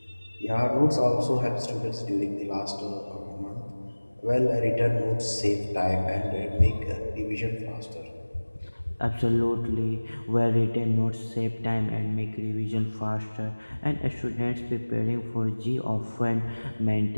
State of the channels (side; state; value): both; inverted; correlation -1.00